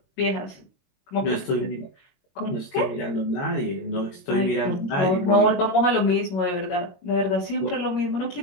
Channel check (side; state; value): right; late; 22 ms